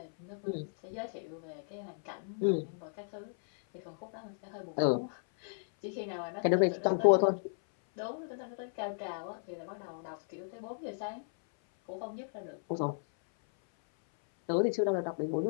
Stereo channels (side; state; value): right; silent; 55 dB below the other